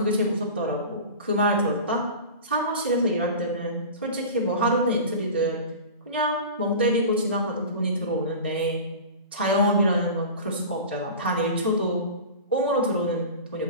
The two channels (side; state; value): both; inverted; correlation -0.34